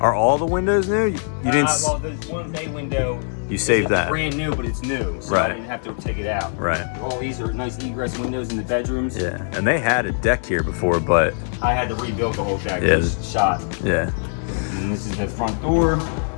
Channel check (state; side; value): silent; right; 64 dB below the other